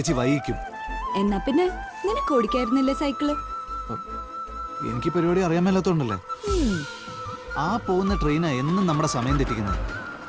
വൈകിക്കും. എന്നാ പിന്നെ നിനക്ക് ഓടിക്കായിരുന്നില്ലേ സൈക്കിള്? എനിക്ക് പരിപാടി അറിയാൻ മേലാത്തോണ്ടല്ലേ. ആ പോകുന്ന ട്രെയിനാ എന്നും നമ്മുടെ സമയം തെറ്റിക്കുന്നത്.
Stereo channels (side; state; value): both; identical; correlation 1.00